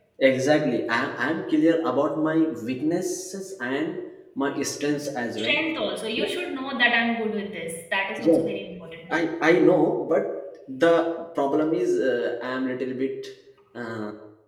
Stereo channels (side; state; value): both; identical; correlation 1.00